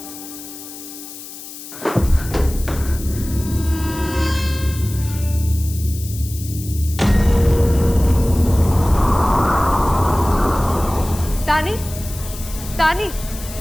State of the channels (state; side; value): noise; left; hiss, 13 dB below the sound